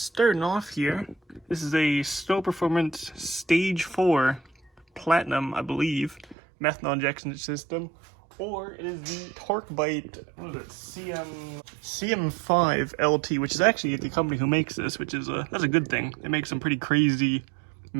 off here, this is a Snow Performance Stage 4 Platinum, I believe, methanol injection system. Or it is the Torque Bite, what is it, CM5 LT, which is actually the company who makes this, which is that's a good thing. They make some pretty crazy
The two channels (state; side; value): drops out; left; at 6.4 s